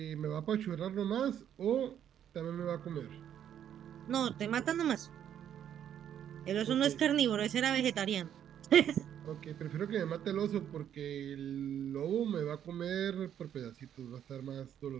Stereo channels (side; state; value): left; quieter; 9.8 dB